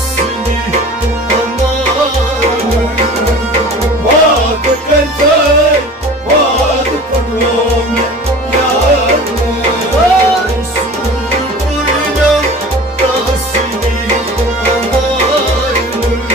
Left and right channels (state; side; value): normal; both; correlation 0.40